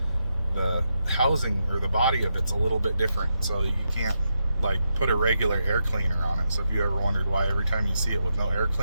the housing or the body of it's a little bit different, so you can't like put a regular air cleaner on it. So if you ever wondered why every time you see it with no air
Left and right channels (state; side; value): inverted; both; correlation -0.85